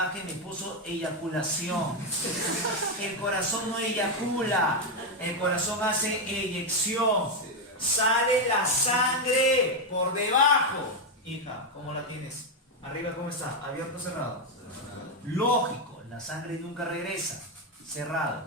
me puso eyaculación. El corazón no eyacula. El corazón hace eyección. Sale la sangre por debajo. Hija, ¿cómo la tienes? Arriba, ¿cómo está? ¿Abierto o cerrado? Lógico, la sangre nunca regresa.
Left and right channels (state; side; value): normal; both; correlation 0.05